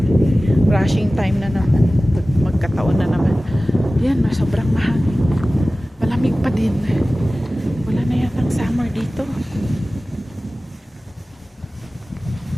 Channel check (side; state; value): both; normal; correlation 0.97